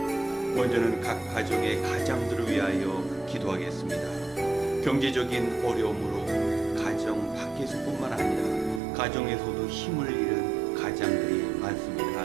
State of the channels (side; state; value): left; drops out; at 8.8 s